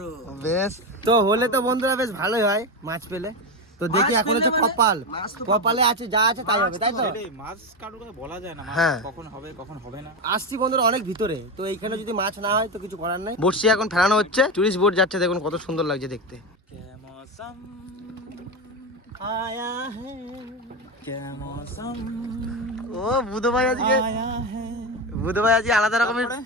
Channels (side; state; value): both; normal; correlation 0.16